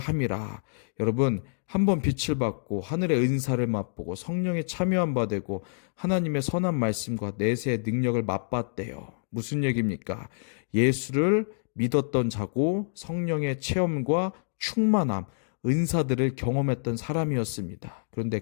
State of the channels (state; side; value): silent; right; digital silence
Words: 여러분, 한번 빛을 받고 하늘의 은사를 맛보고 성령에 참여한 바 되고 하나님의 선한 말씀과 내세의 능력을 맛봤대요. 무슨 얘기입니까? 예수를 믿었던 자고 성령의 체험과 충만함, 은사들을 경험했던 사람이었습니다. 그런데